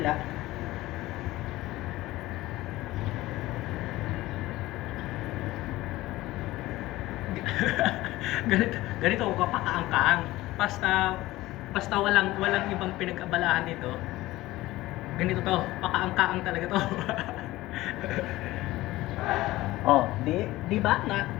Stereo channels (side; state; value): right; quieter; 17.7 dB